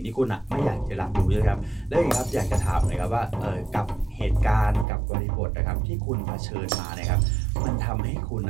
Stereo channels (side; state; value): left; drops out; at 4.9 s